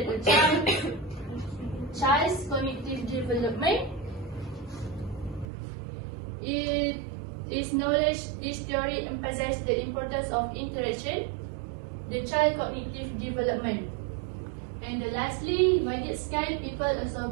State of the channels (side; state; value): left; drops out; at 5.5 s